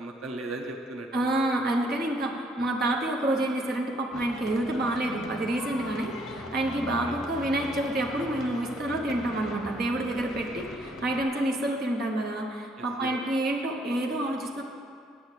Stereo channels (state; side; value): normal; both; correlation 0.67